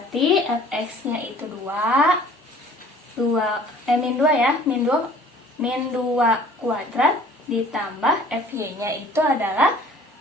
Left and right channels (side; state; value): both; normal; correlation 0.51